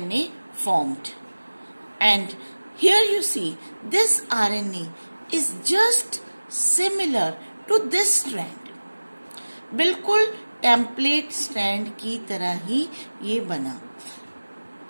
formed, and here you see this RNA is just similar to this strand, बिल्कुल टेम्पलेट स्ट्रैंड की तरह ही ये बना।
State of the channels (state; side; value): inverted; both; correlation -1.00